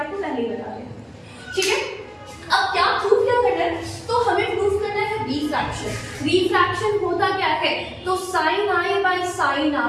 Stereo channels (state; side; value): identical; both; correlation 1.00